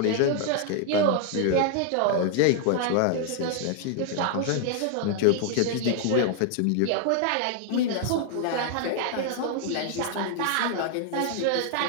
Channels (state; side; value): different; both; correlation 0.00